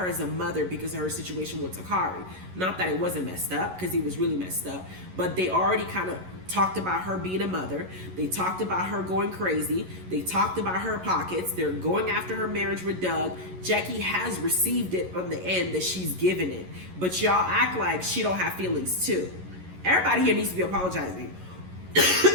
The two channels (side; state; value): left; late; 11 ms